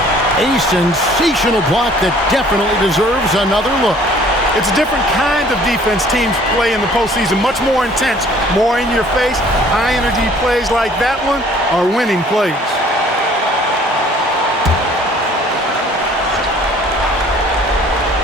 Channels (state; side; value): normal; both; correlation 0.55